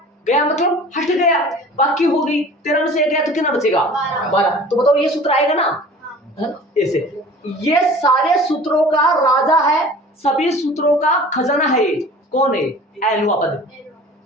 मतलब हट गया, बाकी हो गई 13 में से 1 गया तो कितना बचेगा 12। तो बताओ ये सूत्र आएगा ना ऐसे, ये सारे सूत्रों का राजा है, सभी सूत्रों का खजाना है, ये कौन है एनवा पद,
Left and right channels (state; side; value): normal; both; correlation 0.43